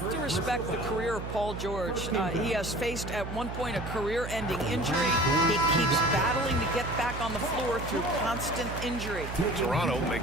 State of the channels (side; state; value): right; noise; hum, 7 dB below the sound